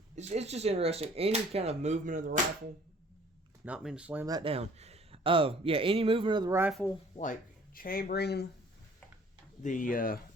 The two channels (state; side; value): normal; both; correlation 0.55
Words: it's just interesting. Any kind of movement of the rifle, not mean to slam that down. Any movement of the rifle, like chambering the